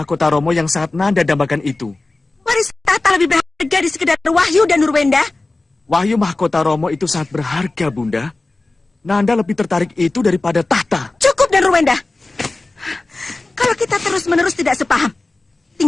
Romo yang sangat Nanda dambakan itu. Warisan tahta lebih berharga di sekedar Wahyu dan Nurwenda. Wahyu Mahkota Romo itu sangat berharga, Bunda. Nanda lebih tertarik itu daripada tahta. Cukup dan Nurwenda. Kalau kita terus-menerus tidak sepaham,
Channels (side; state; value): right; quieter; 3.2 dB